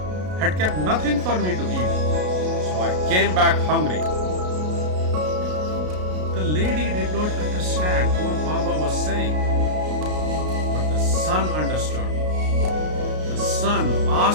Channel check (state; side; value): late; left; 33 ms